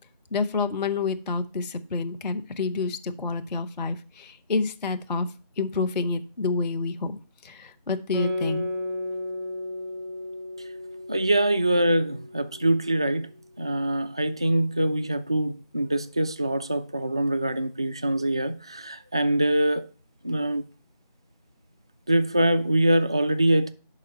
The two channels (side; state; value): both; inverted; correlation -0.81